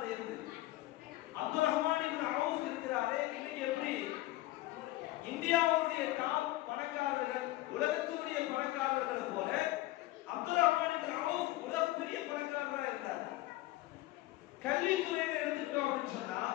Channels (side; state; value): right; quieter; 17.4 dB